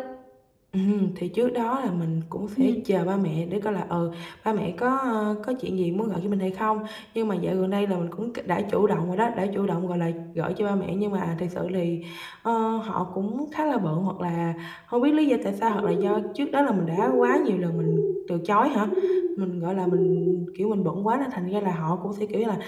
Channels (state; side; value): identical; both; correlation 1.00